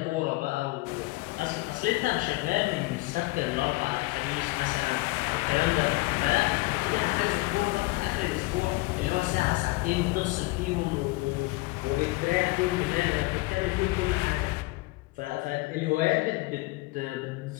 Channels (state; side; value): quieter; right; 22.1 dB